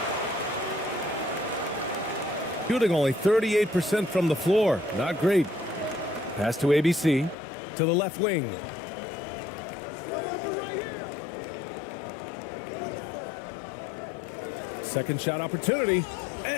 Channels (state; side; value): drops out; right; at 7.4 s